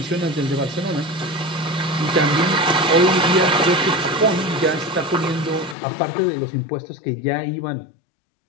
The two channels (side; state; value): right; drops out; at 5.8 s